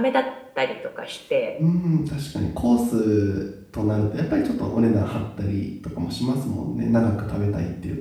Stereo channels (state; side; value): identical; both; correlation 1.00